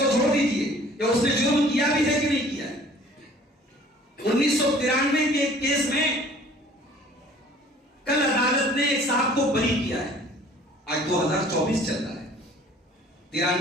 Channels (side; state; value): both; normal; correlation 0.52